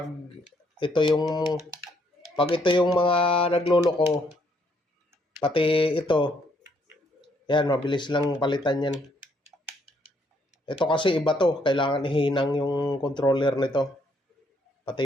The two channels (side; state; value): both; normal; correlation 0.70